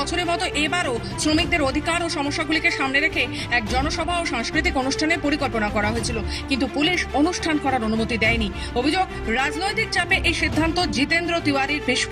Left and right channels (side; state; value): both; identical; correlation 1.00